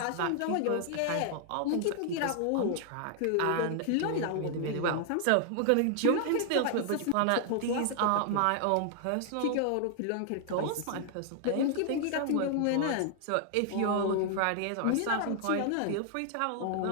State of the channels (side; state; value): both; different; correlation 0.00